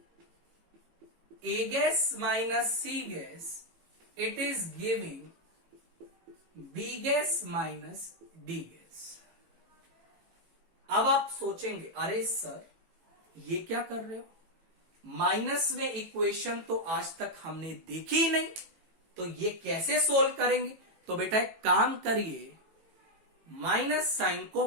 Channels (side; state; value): left; late; 18 ms